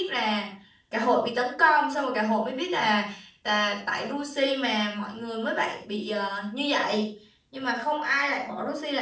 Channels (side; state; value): both; identical; correlation 1.00